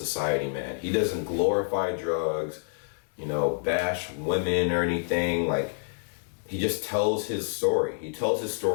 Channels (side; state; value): right; silent; digital silence